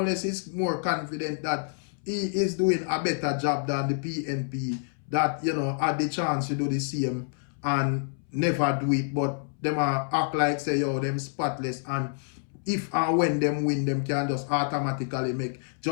is more confident that he is doing a better job than the PNP that, you know, had the chance to do the same and never do it, but them act like say, yo, them spotless, and if and when them win, them can just automatically make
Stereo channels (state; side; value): silent; right; 60 dB below the other